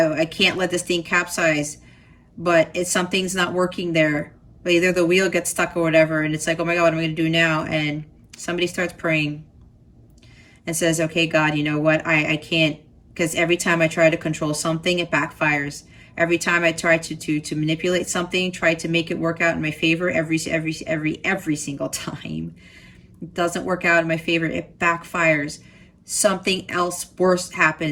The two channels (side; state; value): both; identical; correlation 1.00